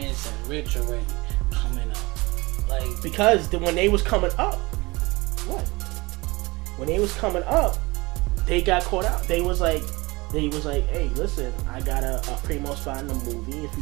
and rich already coming up? Like, because when they was coming up, when they was coming up, they got caught out. They was like, hey, listen, I got a primo spot in the movie if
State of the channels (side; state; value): left; quieter; 23.0 dB